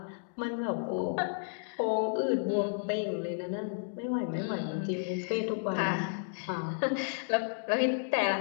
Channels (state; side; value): silent; right; digital silence